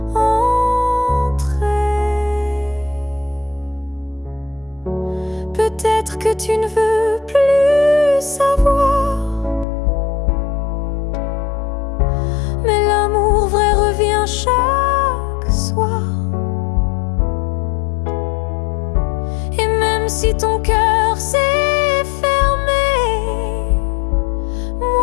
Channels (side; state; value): right; drops out; at 9.7 s